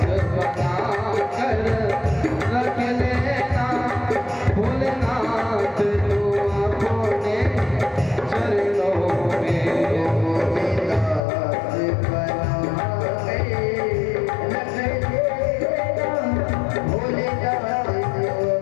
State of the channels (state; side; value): drops out; right; at 11.2 s